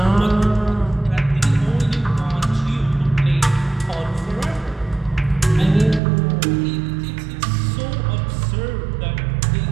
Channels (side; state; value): left; drops out; at 6.0 s